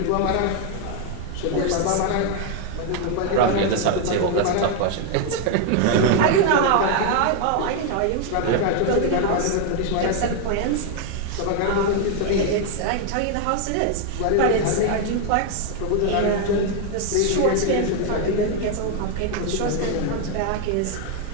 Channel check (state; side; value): different; both; correlation 0.00